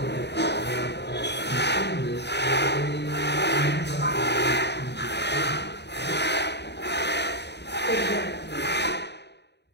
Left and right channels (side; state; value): right; late; 0.50 ms